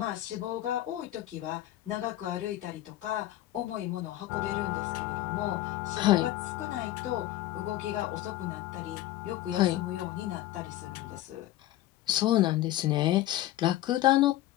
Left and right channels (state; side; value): quieter; right; 14.9 dB